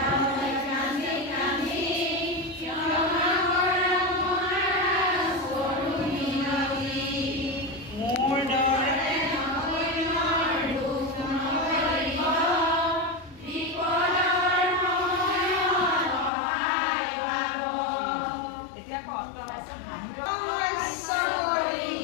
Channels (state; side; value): drops out; right; at 16.3 s